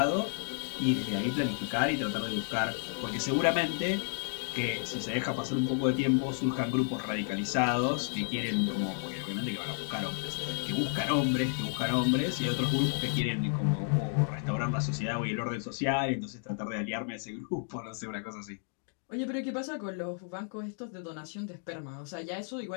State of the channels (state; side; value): silent; right; 56 dB below the other